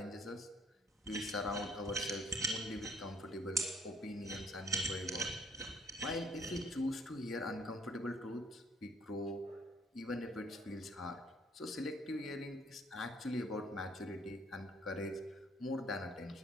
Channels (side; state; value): both; normal; correlation 0.60